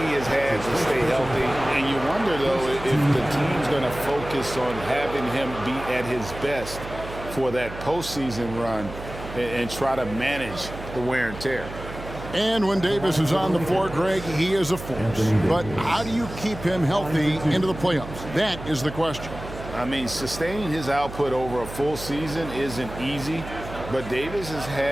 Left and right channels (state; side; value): noise; right; hum, 12 dB below the sound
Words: has had to stay healthy, and you wonder, though, if the team's going to focus on having him be at his best for that postseason run and try to manage the wear and tear. And when Davis is on the floor, Greg, he is a force. But how do you keep him healthy into the playoffs? That is the question. I mean, sustaining his output over a full season isn't easy, but Davis has